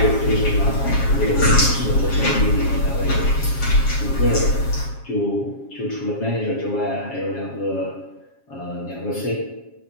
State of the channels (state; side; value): late; right; 7.3 ms